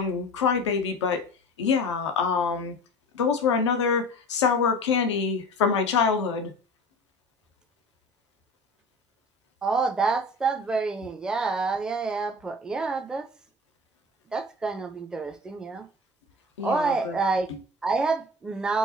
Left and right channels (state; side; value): normal; both; correlation 0.37